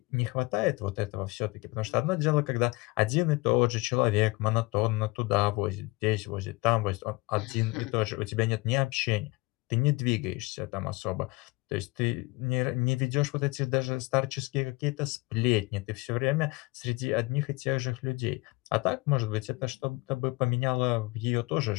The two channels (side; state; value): right; quieter; 24.2 dB